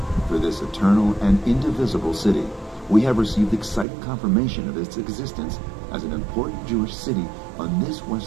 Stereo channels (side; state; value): left; drops out; at 3.9 s